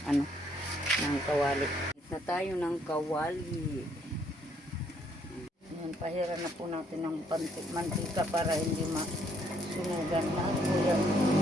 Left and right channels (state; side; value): normal; both; correlation 0.68